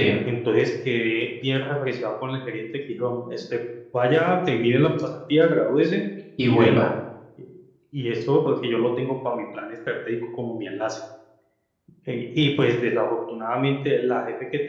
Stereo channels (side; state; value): both; identical; correlation 1.00